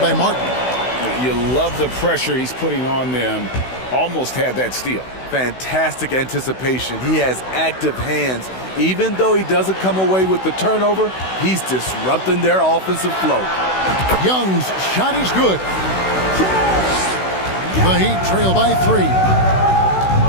Martin. You love the pressure he's putting on them. Almost had that steal. Fantastic anticipation. He has active hands. Even though he doesn't come away with the turnover, he's disrupting their offensive flow. Young's shot is good. The Heat trail by 3.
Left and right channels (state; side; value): late; right; 16 ms